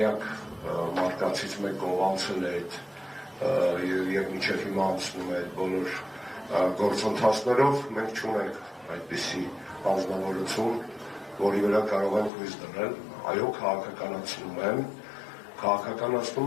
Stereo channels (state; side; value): drops out; right; at 12.3 s